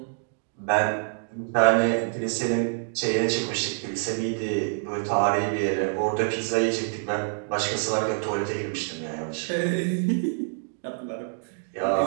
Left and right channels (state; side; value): silent; left; digital silence